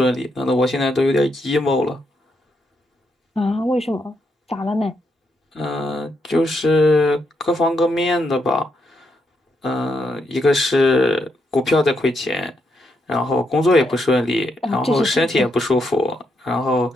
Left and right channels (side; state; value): both; normal; correlation 0.79